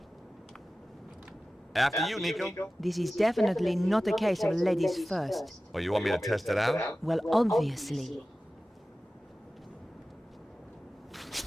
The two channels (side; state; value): both; normal; correlation 0.96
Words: After you, Nico. This is definitely not a case of ladies first. Oh, you want me to test it out? Well, obviously.